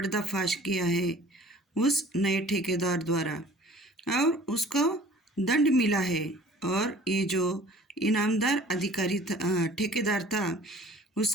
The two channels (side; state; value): both; normal; correlation 0.48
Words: किया है उस नए ठेकेदार द्वारा, और उसको दंड मिला है। और ये जो इनामदार अधिकारी ठेकेदार था